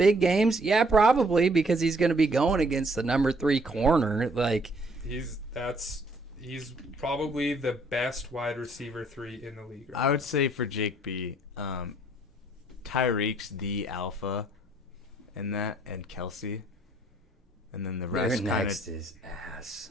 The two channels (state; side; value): normal; both; correlation 0.64